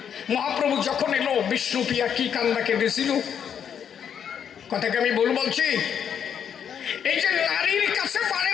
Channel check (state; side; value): quieter; right; 8.2 dB